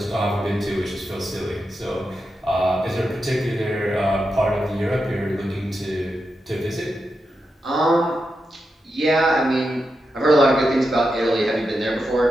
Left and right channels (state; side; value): normal; both; correlation 0.88